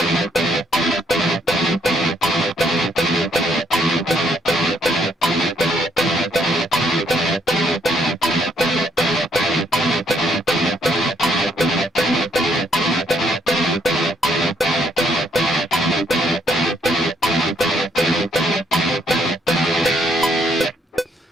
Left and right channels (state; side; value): normal; both; correlation 0.71